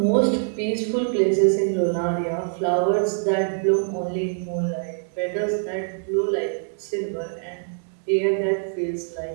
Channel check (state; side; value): silent; left; 63 dB below the other